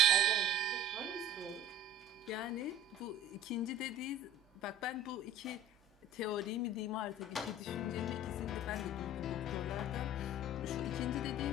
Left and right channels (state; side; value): normal; both; correlation 0.42